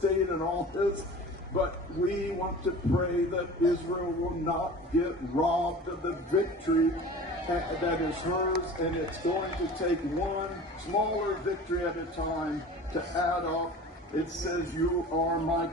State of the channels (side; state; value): both; normal; correlation 0.39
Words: and all this. But we want to pray that Israel will not get robbed of the victory that is hers, and it's going to take one smaller victory at a time to add up. It says, "You are my